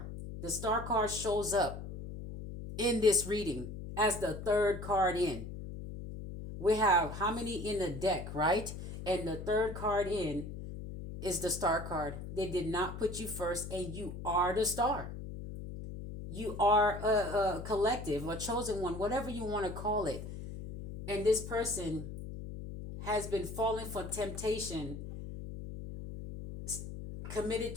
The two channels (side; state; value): left; noise; hum, 9 dB below the sound